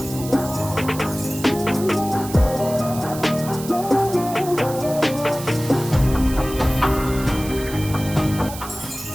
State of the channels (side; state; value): right; noise; hiss, 12 dB below the sound